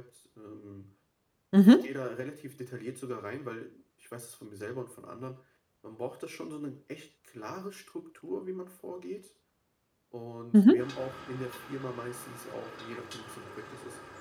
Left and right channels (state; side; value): identical; both; correlation 1.00